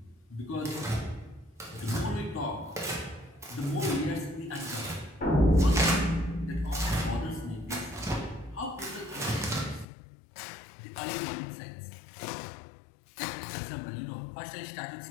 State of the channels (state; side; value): drops out; right; at 9.9 s